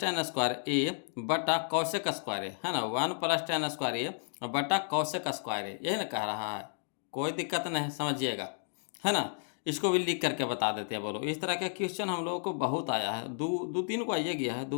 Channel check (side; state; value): right; silent; 56 dB below the other